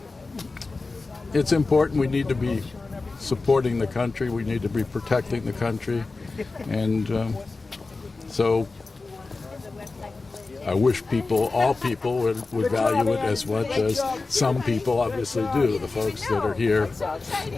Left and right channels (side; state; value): right; quieter; 3.7 dB